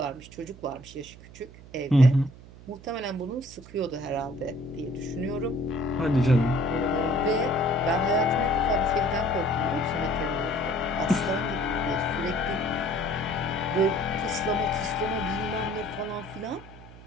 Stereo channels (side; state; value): right; noise; hum, 19 dB below the sound